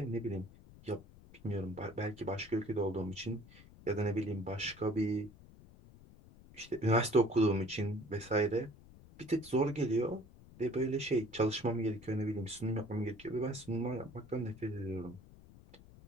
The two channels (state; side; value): noise; left; rumble, 21 dB below the sound